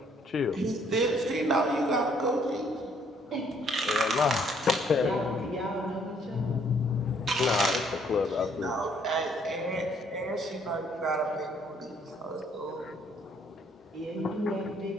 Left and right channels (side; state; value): both; normal; correlation 0.65